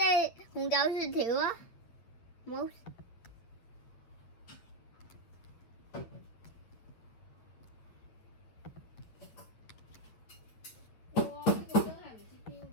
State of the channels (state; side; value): late; right; 8.9 ms